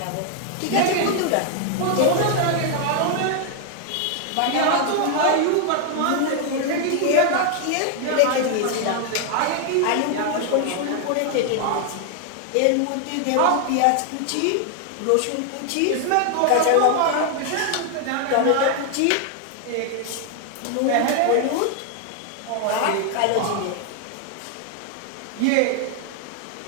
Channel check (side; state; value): both; different; correlation 0.00